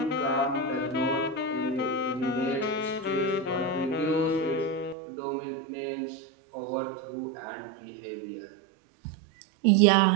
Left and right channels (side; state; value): left; drops out; at 5.0 s